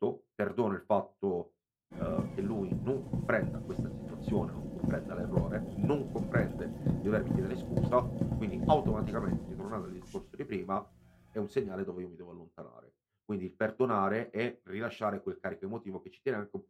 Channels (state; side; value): identical; both; correlation 1.00